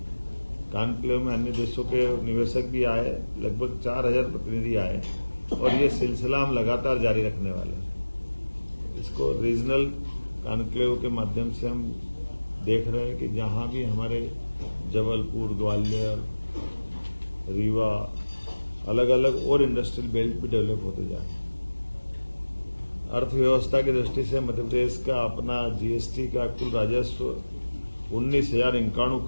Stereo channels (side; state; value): both; inverted; correlation -1.00